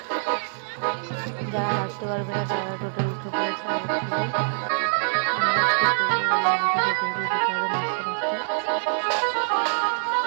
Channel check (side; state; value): left; silent; digital silence